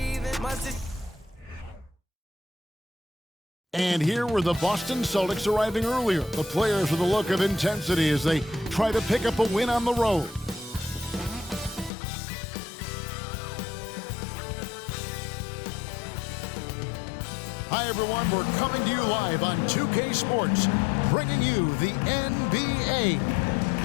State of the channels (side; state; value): right; drops out; at 11.9 s